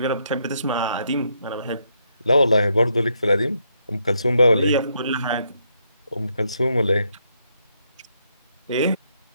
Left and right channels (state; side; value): inverted; both; correlation -0.76